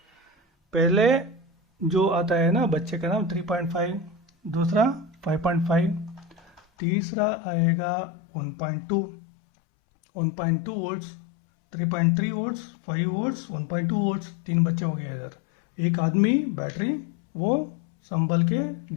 पहले जो आता है ना बच्चे का नाम 3.5, दूसरा 5.5, तीसरा आएगा 1.2, 1.2 वोल्ट्स, 3.3 वोल्ट्स, 5 वोल्ट्स, 1.2 वोल्ट्स। तीन बच्चे हो गए इधर। एक आदमी बैटरी, वो संभल के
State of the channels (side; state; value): right; drops out; at 6.6 s